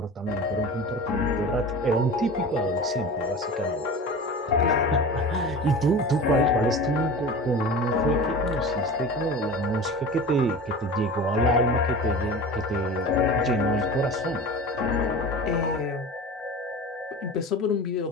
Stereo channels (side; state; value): both; normal; correlation 0.34